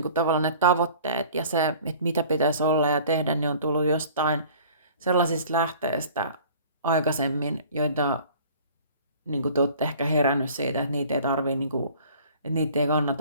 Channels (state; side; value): inverted; both; correlation -0.48